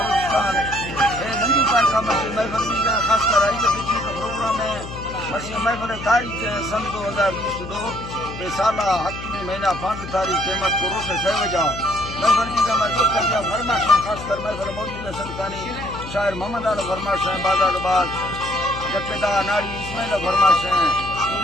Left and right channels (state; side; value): noise; left; hum, 11 dB below the sound